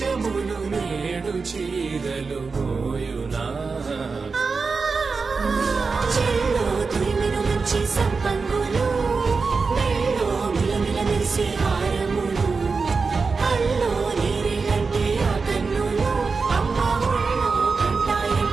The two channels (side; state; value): left; quieter; 4.6 dB